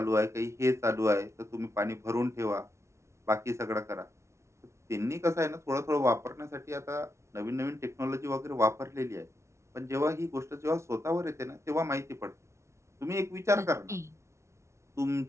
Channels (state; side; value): late; left; 0.13 ms